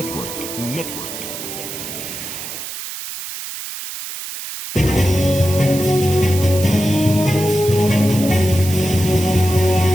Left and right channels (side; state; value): right; noise; hiss, 9 dB below the sound